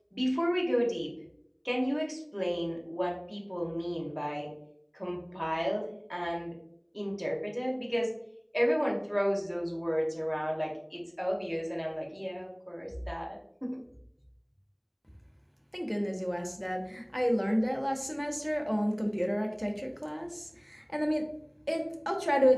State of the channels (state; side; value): identical; both; correlation 1.00